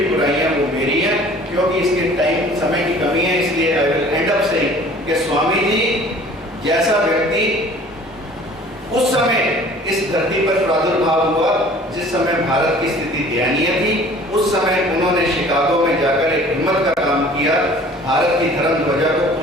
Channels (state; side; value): normal; both; correlation 0.49